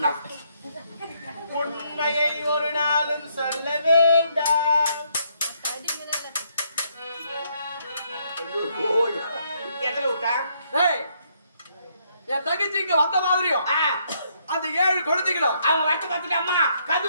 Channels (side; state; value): both; inverted; correlation -0.72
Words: உண்மையை ஒரு நாளும் சொல்ல வேண்டாம் எதுல விட்டா என் தங்கச்சி இங்க வந்த மாதிரியும் அந்த 7 குழந்தைகளும் அவங்க வட்ட பார்த்துட்டு அம்மா கது